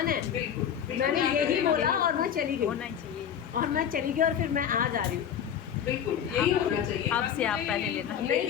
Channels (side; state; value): right; quieter; 8.8 dB